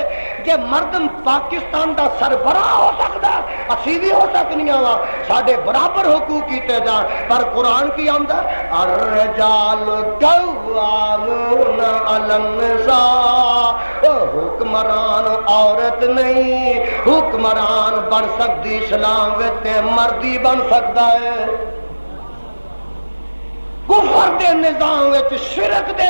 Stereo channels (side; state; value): both; inverted; correlation -1.00